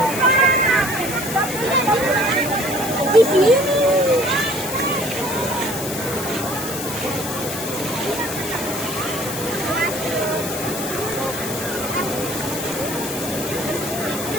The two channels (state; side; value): noise; left; hiss, 7 dB below the sound